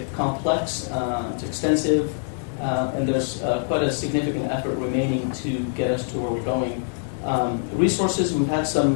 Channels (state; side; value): silent; right; digital silence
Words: complex, it's extensive, and there's quite a significant effort remaining to get us to where we're going. Resources, we've had